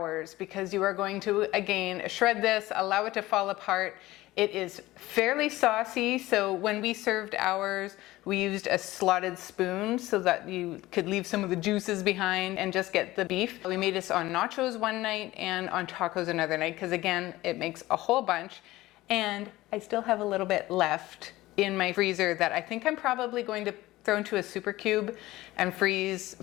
because you are going to, again, shred this, allow it to fall apart. It is fairly saucy, so when we served ours, we used a slotted spoon so that you could leave some of the juices behind and just get the beef. We made this on nachos one night and on tacos another night because, again, it makes a whole bunch. And I still have a little bit left in my freezer that I think I'm probably going to throw into a super cube and freeze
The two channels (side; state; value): right; quieter; 17.7 dB